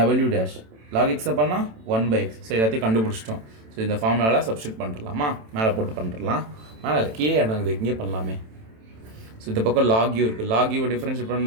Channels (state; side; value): late; left; 27 ms